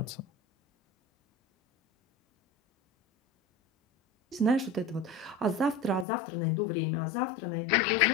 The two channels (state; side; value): drops out; right; at 6.1 s